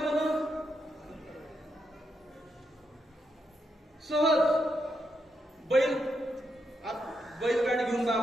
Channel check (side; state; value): both; normal; correlation 0.82